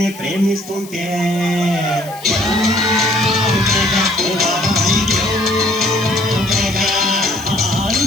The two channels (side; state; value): left; noise; hiss, 19 dB below the sound